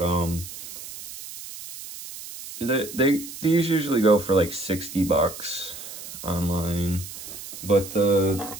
these usually go for like 60 bucks online, but the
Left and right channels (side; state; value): right; noise; hiss, 12 dB below the sound